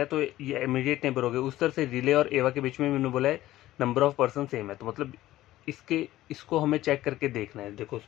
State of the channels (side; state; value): right; quieter; 15.3 dB